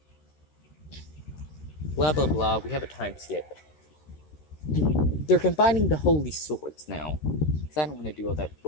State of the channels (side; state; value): right; late; 13 ms